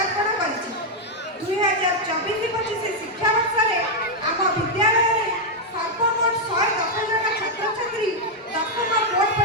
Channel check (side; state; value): both; normal; correlation -0.01